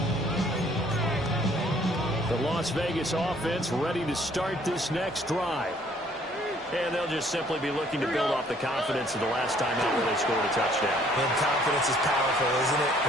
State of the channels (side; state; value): both; normal; correlation 0.61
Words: The Las Vegas offense ready to start this next drive. And they'll just simply be looking to build off the confidence of the last time out where they scored a touchdown. And confidence is powerful, isn't it?